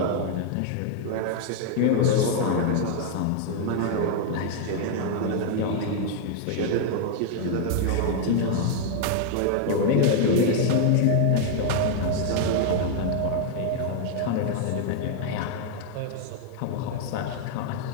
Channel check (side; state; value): both; different; correlation 0.00